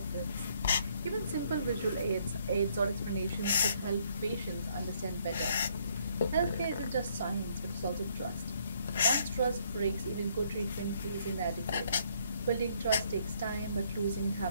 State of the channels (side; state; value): both; inverted; correlation -0.67